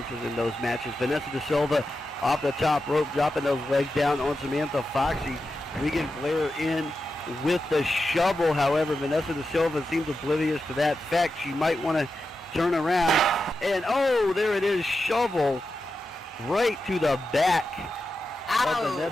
in those matches, Vanessa De Silva off the top rope, dropping those legs down on Samantha Foxy. Regan Blair in with the shovel. However, Vanessa De Silva seems oblivious to that fact. She might want to turn around. And, oh, there it is, shovel right to the back of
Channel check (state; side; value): normal; both; correlation 0.90